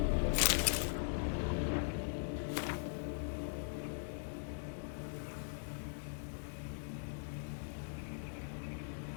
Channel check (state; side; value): silent; right; digital silence